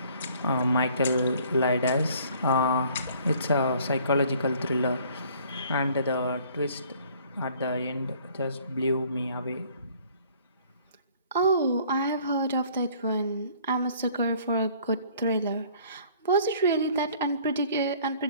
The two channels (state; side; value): inverted; both; correlation -0.56